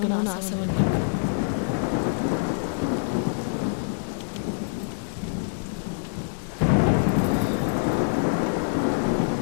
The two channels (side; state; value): right; silent; digital silence